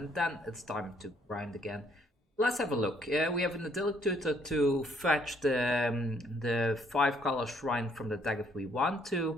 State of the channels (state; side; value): normal; both; correlation 0.67